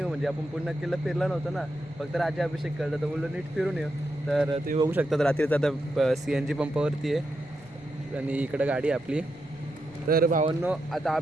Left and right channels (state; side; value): noise; left; rumble, 25 dB below the sound